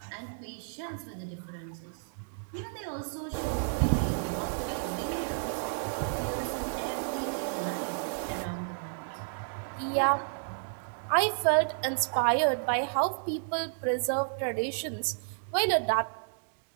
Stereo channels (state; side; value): silent; left; digital silence